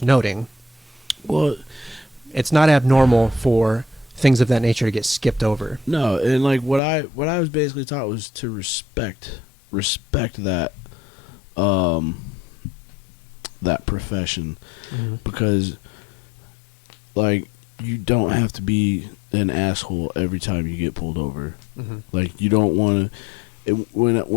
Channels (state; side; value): drops out; right; at 6.8 s